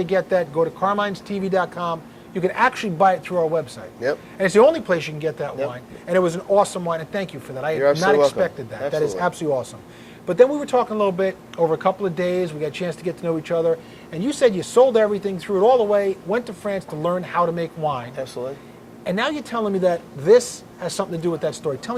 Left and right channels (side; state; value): both; identical; correlation 1.00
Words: get that, go to carminestv.com. You can actually buy it through our website. Yep. And it's the only place you can get that wine. And it was an awesome wine, and thank you for that. I had not expected that. Absolutely. That is absolutely awesome. But then we were talking a little bit over a couple of days. We got a chance to get to know each other. And you said you sold everything, threw it all away, went to France to learn how to make wine. Absolutely. And now you're telling me that this has something to do with that story. Tell